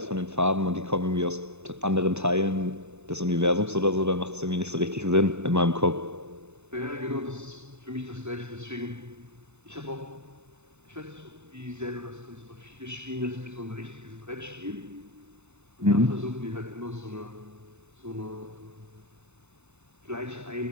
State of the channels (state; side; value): late; left; 0.82 ms